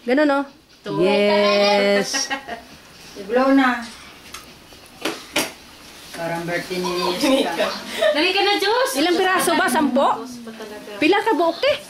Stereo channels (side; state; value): both; identical; correlation 1.00